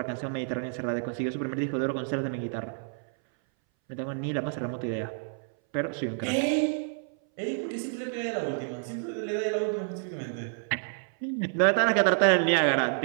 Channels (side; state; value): left; silent; 59 dB below the other